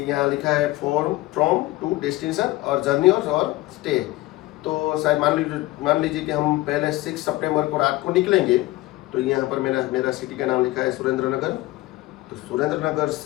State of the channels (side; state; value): right; quieter; 18.7 dB